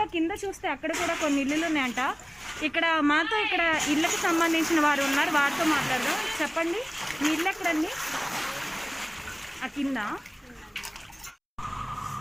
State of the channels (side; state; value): both; identical; correlation 1.00